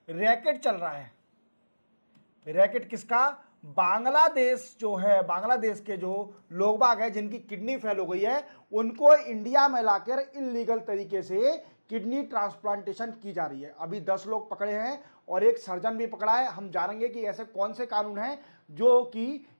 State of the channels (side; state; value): both; inverted; correlation -1.00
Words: रैकेट चल रहा है। रैकेट किसका? बांग्लादेश जो है, बांग्लादेश के जो लोग बाग है जिनकी किडनी फेल हो गई है, उनको इंडिया में लाकर इलीगल तरीके से किडनी ट्रांसप्लांटेशन की जा रही है। अभी 10 लोग पकड़े हैं और एक सर्जन भी पकड़ा है। हम जानेंगे कि ऐसे कौन से कानून हैं जो कि